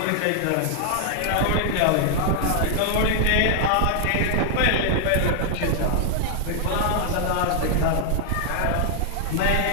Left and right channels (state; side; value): different; both; correlation 0.00